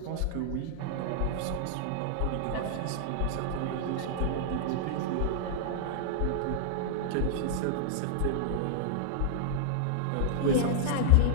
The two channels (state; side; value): different; both; correlation -0.01